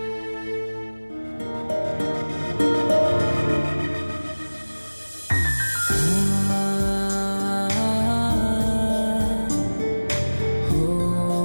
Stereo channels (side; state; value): both; inverted; correlation -1.00